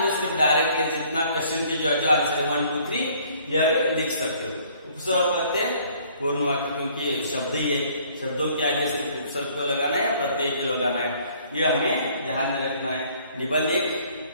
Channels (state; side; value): inverted; both; correlation -0.59